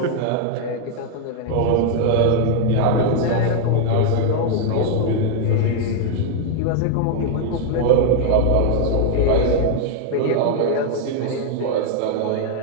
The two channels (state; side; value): different; both; correlation 0.00